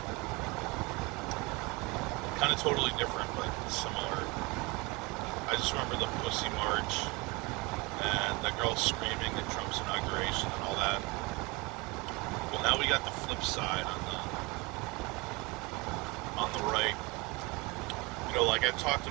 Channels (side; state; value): left; quieter; 25.8 dB